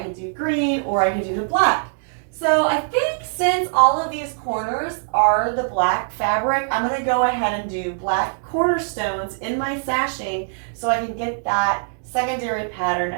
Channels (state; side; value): silent; left; digital silence